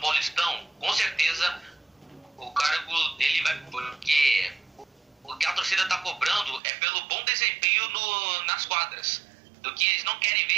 Paulistão, com certeza o cargo dele vai... Porque o que a torcida está cobrando é pelo bom desempenho nas quadras. Do que eles não querem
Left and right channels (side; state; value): left; drops out; at 6.6 s